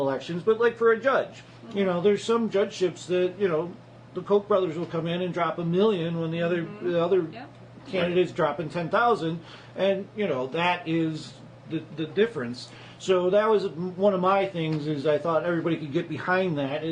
elections, but like for a judge, you know, there's some judgeships that, you know, the Koch brothers will come in and drop $1 million when the other candidates dropping 10,000, and you know that is the difference. So that was one of my things. Is I thought everybody could get behind that.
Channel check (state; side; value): identical; both; correlation 1.00